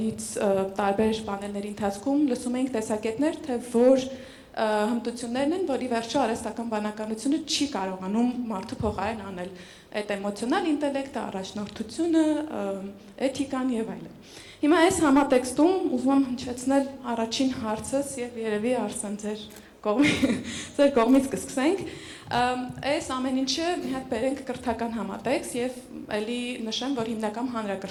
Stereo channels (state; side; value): identical; both; correlation 1.00